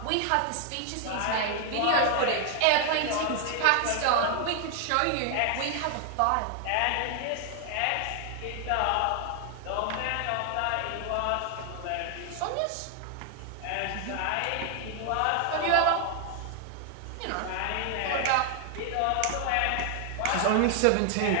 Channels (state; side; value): different; both; correlation 0.00